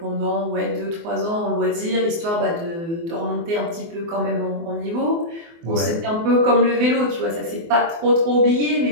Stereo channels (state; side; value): late; left; 24 ms